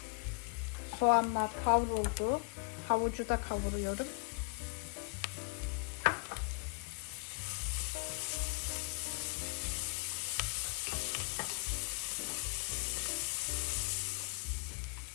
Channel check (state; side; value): quieter; right; 35.8 dB